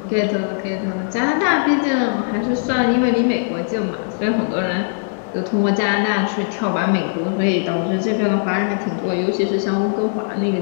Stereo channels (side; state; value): right; silent; 56 dB below the other